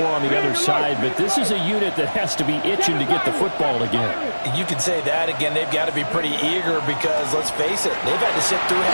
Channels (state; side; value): inverted; both; correlation -1.00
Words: on the other side. But this is a unit that has to be itching to get the football again. You can say that again. They've got to be pretty eager because, let's face it, they've had to sit through